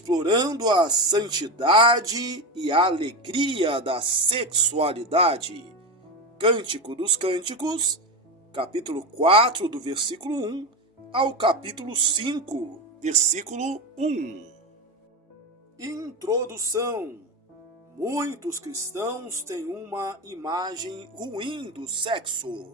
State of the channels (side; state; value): both; normal; correlation 0.18